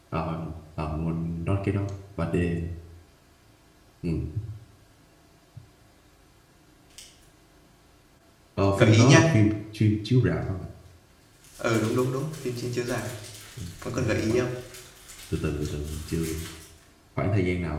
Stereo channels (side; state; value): both; identical; correlation 1.00